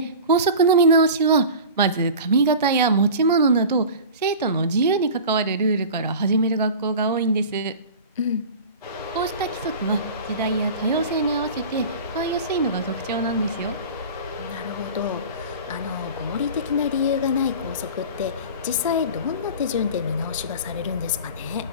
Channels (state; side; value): inverted; both; correlation -0.35